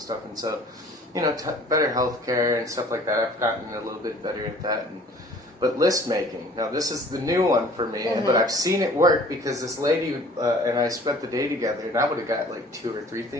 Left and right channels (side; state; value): both; normal; correlation 0.51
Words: stuff. And so, better healthcare and stuff like that. I've gotten a little bit better at that. But list making, now this is the new one for me, but I've seen it work because this lady and I spent the day together, and I would have got like 2 or 3